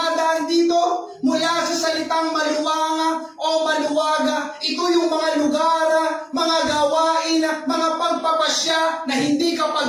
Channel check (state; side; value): identical; both; correlation 1.00